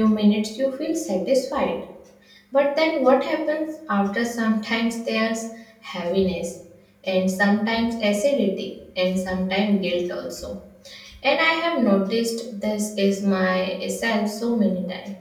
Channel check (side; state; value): both; identical; correlation 1.00